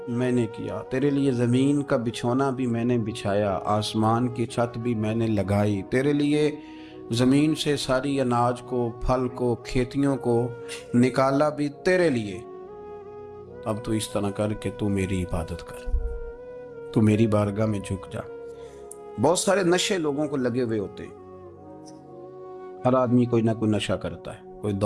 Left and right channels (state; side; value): identical; both; correlation 1.00